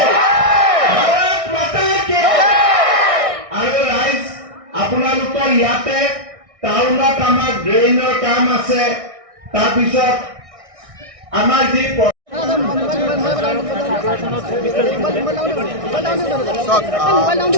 আৰু ৰাইজ আপোনালোকৰ ইয়াতে টাউনত আমাৰ ড্ৰেইনৰ কাম আছে তাৰপিছত আমাৰ যি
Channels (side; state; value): left; late; 1.6 ms